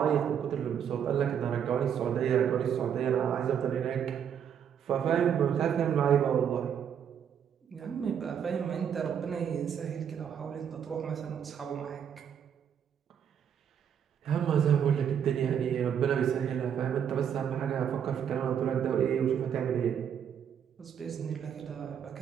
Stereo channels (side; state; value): left; quieter; 8.4 dB